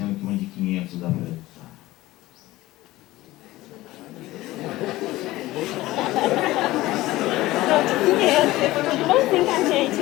que uma de 500 dá para usar. Bonzinho com a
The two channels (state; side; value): quieter; right; 17.7 dB